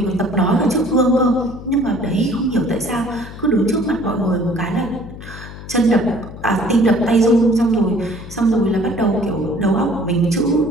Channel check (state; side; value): noise; left; hum, 14 dB below the sound